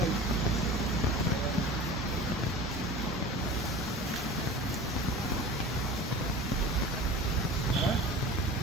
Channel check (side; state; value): both; normal; correlation 0.37